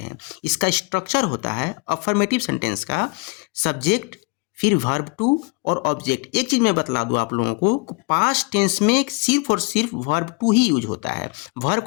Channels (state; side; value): quieter; right; 30.2 dB